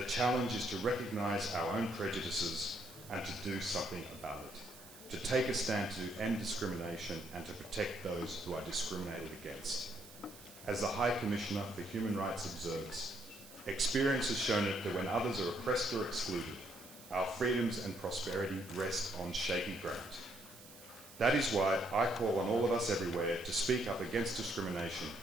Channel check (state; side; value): noise; right; hiss, 19 dB below the sound